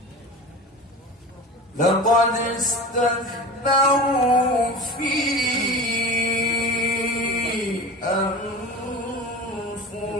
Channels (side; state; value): both; normal; correlation 0.33